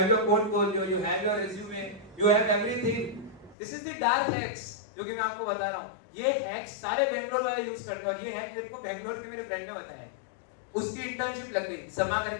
your portfolio, you have your resume, you have everything. This is the dark hacks जो कि मैं आपको बता रहा हूँ। ये हैक्स सारे बैंगलोर वाले यूज करते हैं, और ये हैक मेरे को बैंगलोर के मेरे फ्रेंड ने बताया। उसकी इंटर्नशिप लग गई, समा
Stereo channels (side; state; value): right; drops out; at 3.6 s